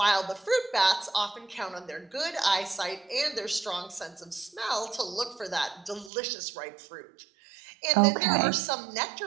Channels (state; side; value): drops out; left; at 6.1 s